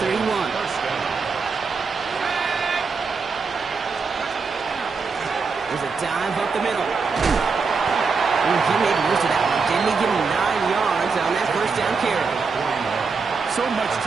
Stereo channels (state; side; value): quieter; left; 4.9 dB